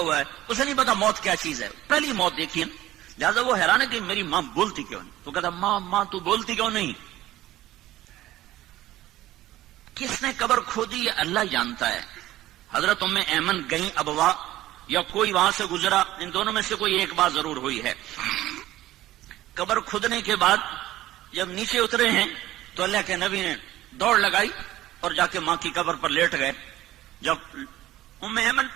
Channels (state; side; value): quieter; left; 15.2 dB